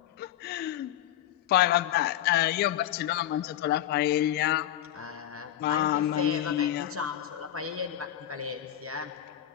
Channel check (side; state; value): right; quieter; 11.9 dB